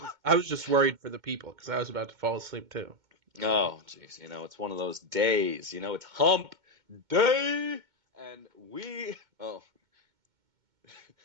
I was just worried for the people because I was about to fall asleep too. Oh, jeez, it's one of those days. It's hump day, and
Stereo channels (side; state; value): left; late; 2.2 ms